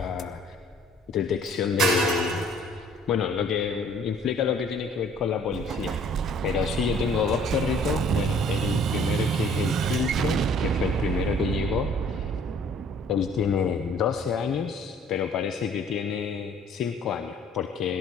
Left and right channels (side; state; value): both; normal; correlation 0.55